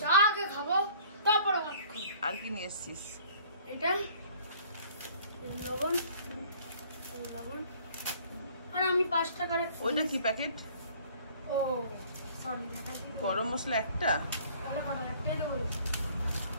চা আগে খাবো, তারপরে ভাত খাবো। আর কি নিয়ে এসছিস? এটা লবণ, আর আমি 5 টাকার। ওইটা কি প্যাকেট? ও সরি, গরম মশলা একটা, তাহলে কত? একটাই দেবো,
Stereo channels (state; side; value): inverted; both; correlation -0.54